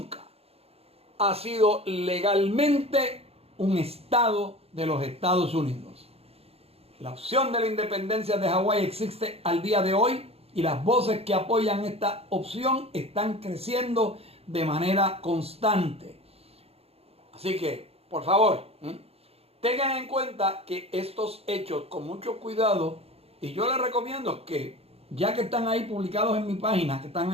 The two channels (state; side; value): late; left; 0.29 ms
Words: ha sido legalmente un estado de los Estados Unidos. La opción de la independencia de Hawái existe al día de hoy y las voces que apoyan esta opción están creciendo de manera constante. Así que, por favor, tengan en cuenta que estos hechos, con mucho cuidado, y yo les recomiendo que, ya que están ahí publicados en mi página, que están